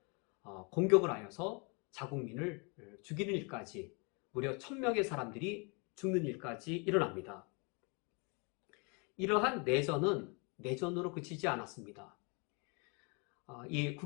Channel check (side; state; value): right; quieter; 33.1 dB